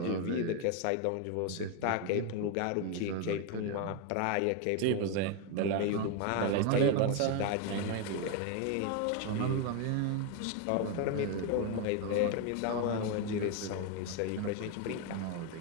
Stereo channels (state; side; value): different; both; correlation 0.01